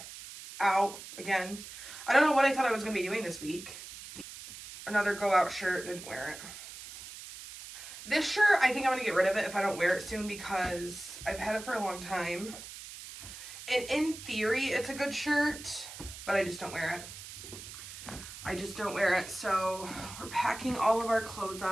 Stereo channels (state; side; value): noise; right; hiss, 13 dB below the sound